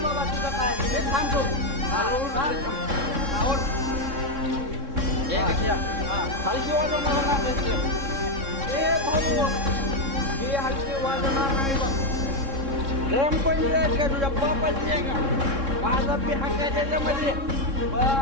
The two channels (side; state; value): left; late; 3.6 ms